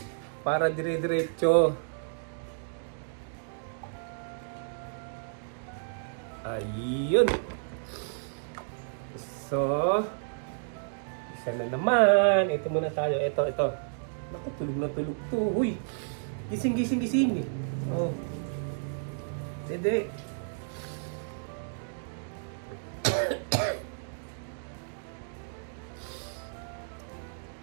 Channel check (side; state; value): left; silent; digital silence